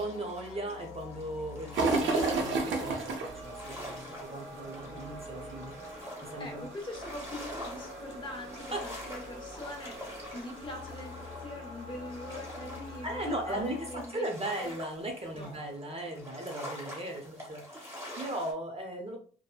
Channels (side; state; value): both; normal; correlation 0.43